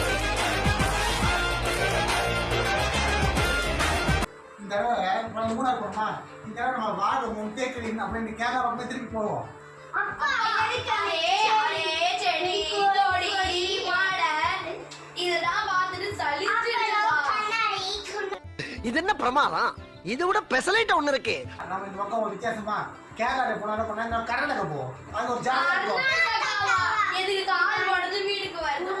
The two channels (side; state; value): both; identical; correlation 1.00